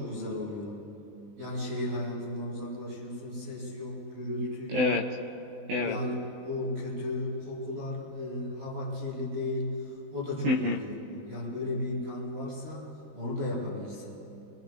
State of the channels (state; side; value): late; left; 20 ms